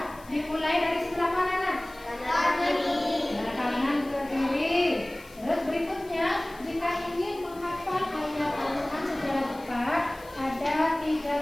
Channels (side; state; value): left; noise; hiss, 23 dB below the sound